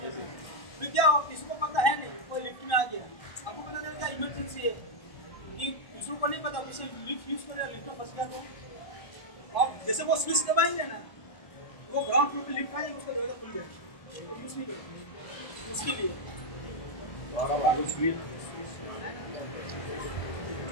हैं। फिर क्या हो, किसी को पता है नहीं, कोई लिफ्ट में आ गया, आपको पता चल गया इमरजेंसी है, कि दूसरों को नहीं पता, किसी लिफ्ट यूज कर रहा है, लिफ्ट में फंस गया तो और जैसे वो स्विच दबाएंगे ना वो ग्राउंड फ्लोर पे लिफ्ट आ जाएगी, उसका दरवाजा खुल जाएगा, यूज नहीं करेंगे उसके लिए।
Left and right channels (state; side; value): late; right; 1.1 ms